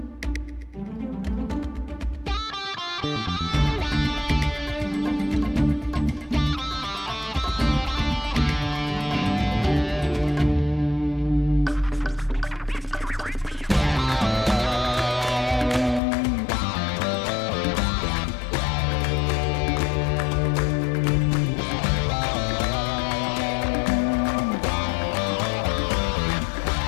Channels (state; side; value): drops out; right; at 16.0 s